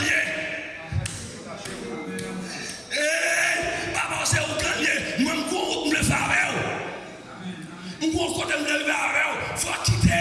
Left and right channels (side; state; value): both; identical; correlation 1.00